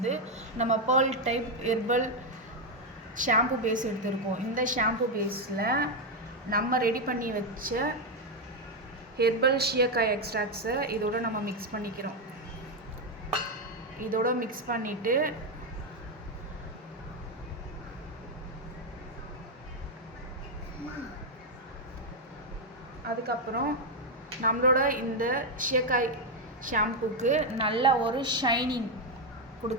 நம்ம pearl type herbal shampoo base எடுத்திருக்கோம். இந்த ஷாம்பு பேஸில் நம்ம ரெடி பண்ணி வச்ச ஹெர்பல் ஷீயக்காய் எக்ஸ்ட்ராக்ட்ஸை இதோட நம்ம மிக்ஸ் பண்ணிக்கிறோம். இதோட மிக்ஸ் பண்ணிவிட்டு அதுக்கப்புறம் நம்மளோட இந்த ஷீயக்காய் ஷாம்புக்கு நல்ல ஒரு ஷைனிங்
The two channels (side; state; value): both; normal; correlation 0.04